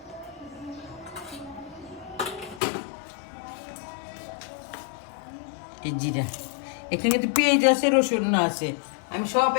এই জিরা, এখানে কিন্তু পেঁয়াজ আছে, রসুন আছে, আমি সব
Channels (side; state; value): right; drops out; at 2.6 s